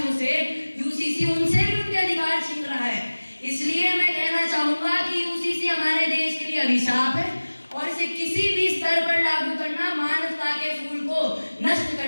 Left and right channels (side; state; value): both; inverted; correlation -1.00